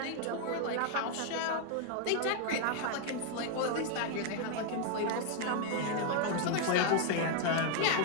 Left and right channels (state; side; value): different; both; correlation 0.00